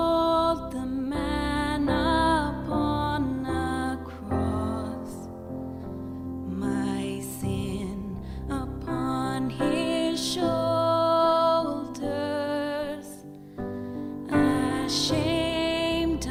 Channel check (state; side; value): identical; both; correlation 1.00